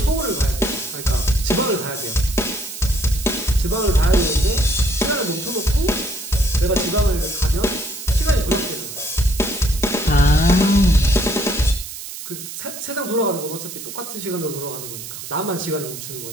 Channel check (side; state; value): right; noise; hiss, 10 dB below the sound